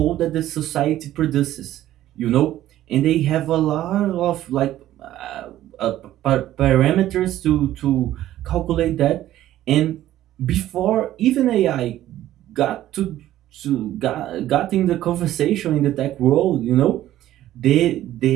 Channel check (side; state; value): left; quieter; 13.5 dB